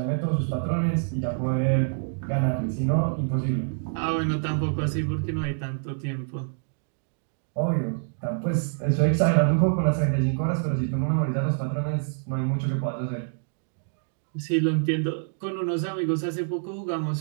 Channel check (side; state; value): left; silent; digital silence